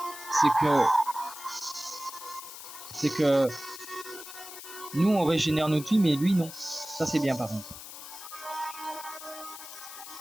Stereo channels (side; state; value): left; noise; hiss, 13 dB below the sound